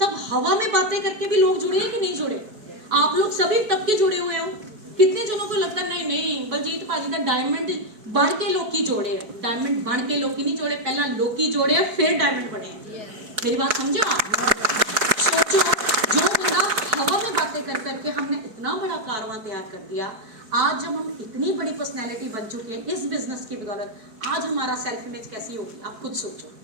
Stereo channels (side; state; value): left; late; 4.6 ms